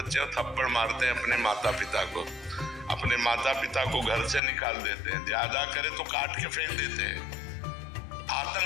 थप्पड़ मारते हैं अपने माता पिता को, अपने माता पिता को घर से निकाल देते हैं, ज्यादा करे तो काट के फेंक देते हैं।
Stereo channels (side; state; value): right; drops out; at 4.4 s